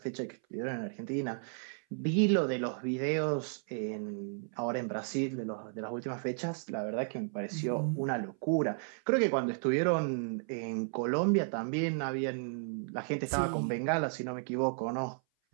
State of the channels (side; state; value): left; silent; 55 dB below the other